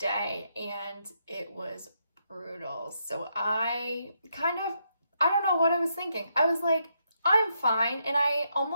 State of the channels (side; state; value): both; inverted; correlation -0.79